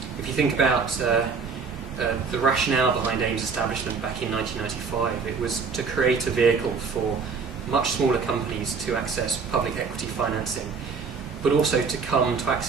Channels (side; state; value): left; quieter; 5.3 dB